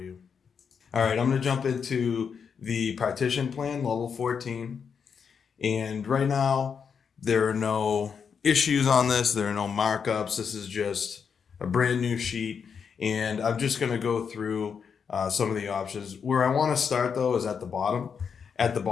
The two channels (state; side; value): quieter; right; 6.5 dB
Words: you. All right, I'm going to jump into the partition plan, level 14. And right now, there are no issues on this. There are no markups. This is just a brand new sheet. And I'm just going to go through some of the options. Where I want to start, though, is at the bottom. At the